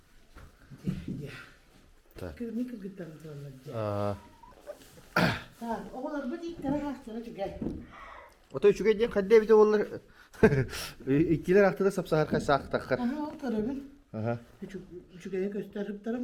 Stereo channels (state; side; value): identical; both; correlation 1.00